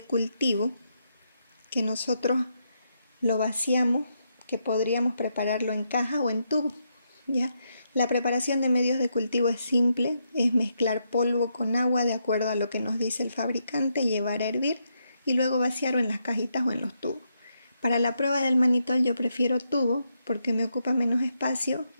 cultivo que nosotros lo vaciamos, que podríamos prepararlo en caja o en tubo, ¿ya? La preparación de medios de cultivo es simple, es mezclar polvo con agua de acuerdo a lo que nos dice el fabricante, llevar a hervir y luego vaciarlo en las cajitas o en los tubos. Para la prueba del mannitol yo prefiero tubo porque me ocupa menos espacio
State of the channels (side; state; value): both; inverted; correlation -0.80